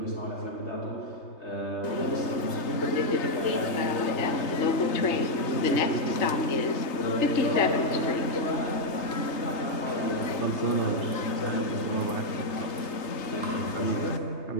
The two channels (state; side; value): late; right; 3.3 ms